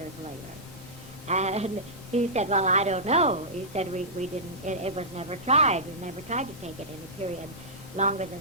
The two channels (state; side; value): normal; both; correlation -0.14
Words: later? And he said, well, I don't know. He said, we didn't, it was never tried. We never tried to take it in a period longer